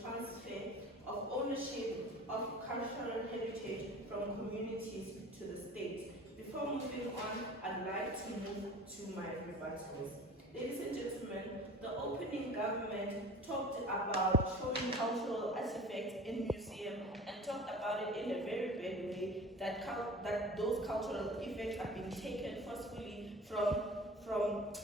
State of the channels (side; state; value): both; normal; correlation 0.41